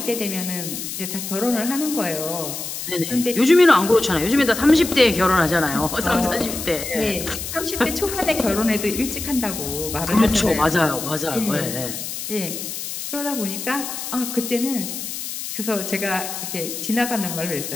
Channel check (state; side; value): noise; left; hiss, 6 dB below the sound